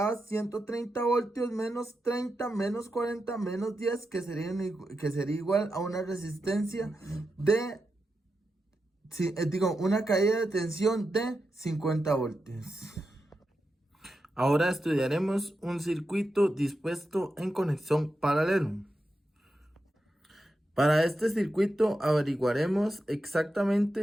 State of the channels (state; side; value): normal; both; correlation 0.88